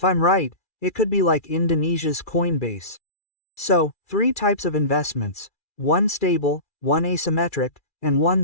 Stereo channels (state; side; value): late; right; 2.4 ms